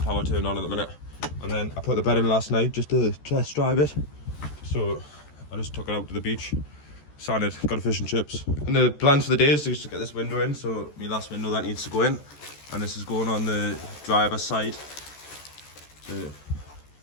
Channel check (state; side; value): late; right; 14 ms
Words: power turned on at the minute. And then I put the bed in last night just to test drive it, so I just took it out to the beach, sanded, got a fish and chips. And the plans for the day is just to get this window in, so my last window that needs to go in, and this is going on the driver's side. So,